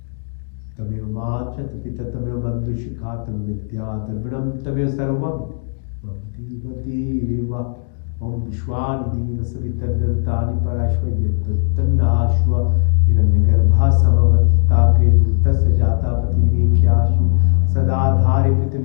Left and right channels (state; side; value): silent; right; 58 dB below the other